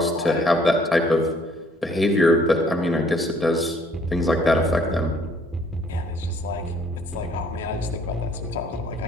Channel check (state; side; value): normal; both; correlation 0.61